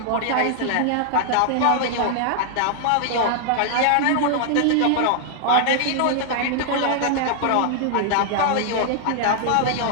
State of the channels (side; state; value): both; different; correlation -0.01